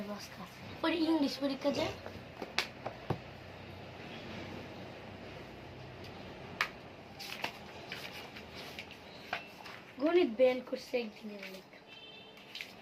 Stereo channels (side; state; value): both; identical; correlation 1.00